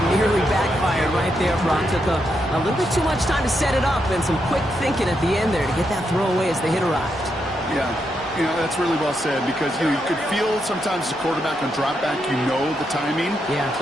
nearly backfired right there. Brock took a little bit too much time to set it up and some quick thinking at the end there to get that throw away as the hit arrived. Yeah, you know, that's really well said because, you know, you could feel sometimes the quarterback on drop back, you know the timing. Yeah.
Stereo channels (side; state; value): both; normal; correlation 0.82